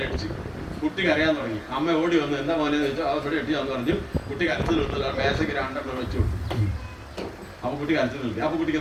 കുട്ടി കരയാൻ തുടങ്ങി. അമ്മ ഓടി വന്ന് എന്താ മോനെ ചോദിച്ചാൽ അവിടെ എട്ടിയാന്ന് പറഞ്ഞു. കുട്ടി കരച്ചിൽ നിർത്തില്ല, മേശയ്ക്ക് 2 വെച്ചു കൊടുത്തു. അപ്പൊ കുട്ടി കരച്ചിൽ നിർത്തി. അപ്പൊ കുട്ടിക്ക്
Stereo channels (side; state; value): both; identical; correlation 1.00